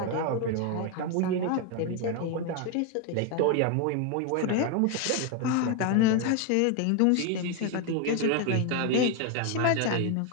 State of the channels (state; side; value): different; both; correlation 0.01